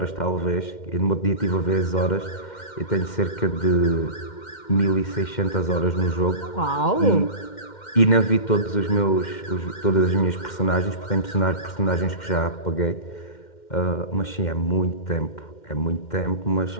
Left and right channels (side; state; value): right; late; 2.1 ms